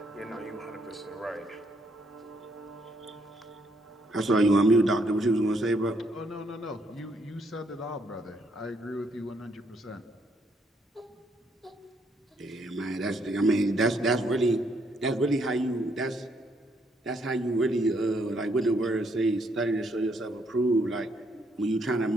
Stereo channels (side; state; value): both; normal; correlation 0.72